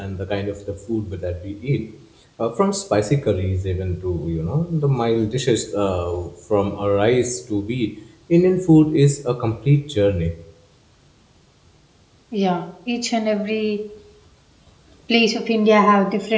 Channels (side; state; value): both; identical; correlation 1.00